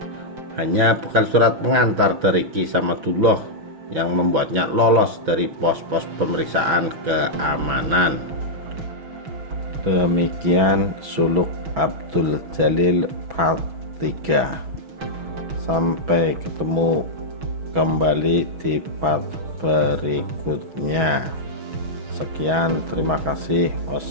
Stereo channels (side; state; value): left; late; 6.1 ms